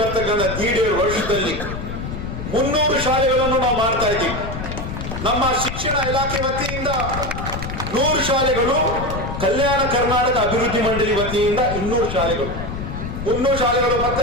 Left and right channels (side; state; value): left; noise; rumble, 6 dB below the sound